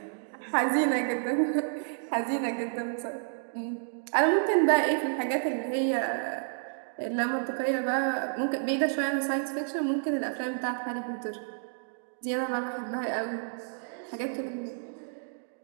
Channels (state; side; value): silent; left; digital silence